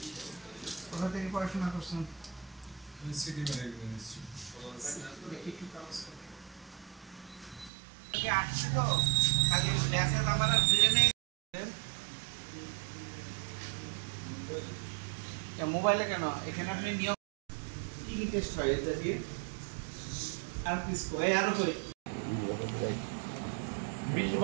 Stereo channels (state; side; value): drops out; left; at 7.7 s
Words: কোথা থেকে পড়াশোনা করছেন সিটি ম্যানেজমেন্ট ইনস্টিটিউট আসছে তো খালি মেসেজ আমার ব্রেনে মোবাইলে কেন এখানে আপনি নিয়ম কি কি টেস্ট হয় এটা দিয়ে আর কি স্কোর আর কই